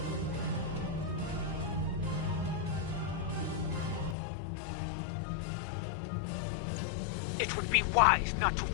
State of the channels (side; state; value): right; drops out; at 4.2 s